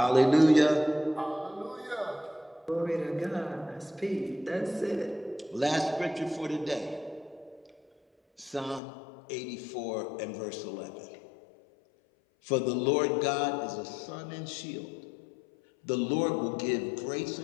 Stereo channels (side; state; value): right; drops out; at 8.8 s